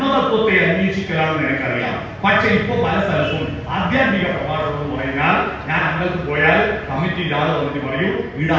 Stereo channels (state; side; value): identical; both; correlation 1.00